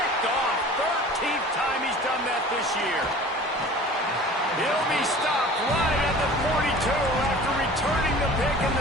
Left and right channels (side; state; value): both; normal; correlation 0.43